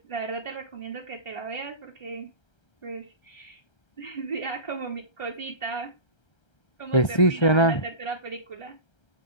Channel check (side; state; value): right; late; 1.3 ms